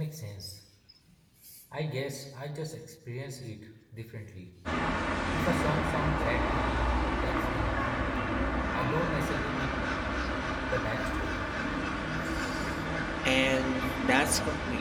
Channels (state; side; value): identical; both; correlation 1.00